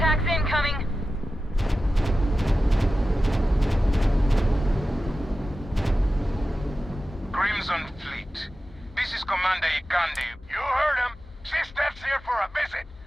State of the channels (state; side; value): normal; both; correlation 0.94